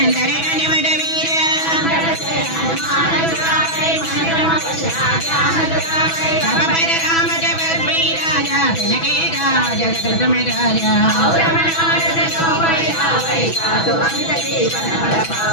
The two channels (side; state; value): right; late; 6.1 ms